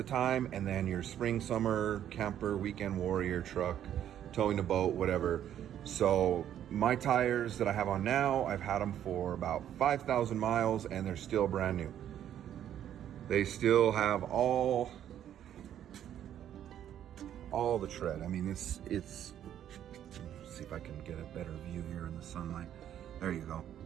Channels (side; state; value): left; quieter; 10.6 dB